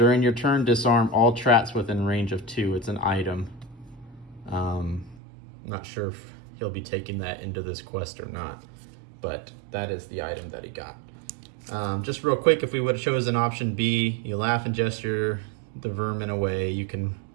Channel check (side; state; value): left; drops out; at 5.2 s